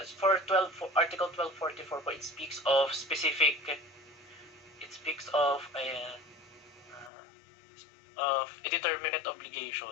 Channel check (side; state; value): right; drops out; at 7.1 s